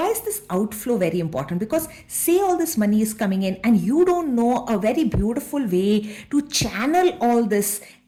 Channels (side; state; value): both; identical; correlation 1.00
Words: is this outflow very important? Because say all this money is coming in and you don't know a very beautiful way to channel all this